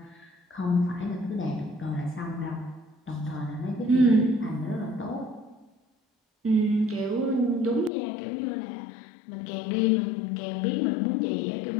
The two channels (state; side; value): drops out; right; at 7.9 s